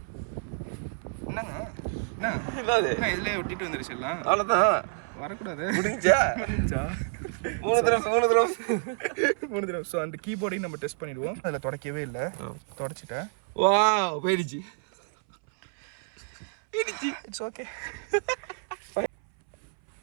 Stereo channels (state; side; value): silent; left; 59 dB below the other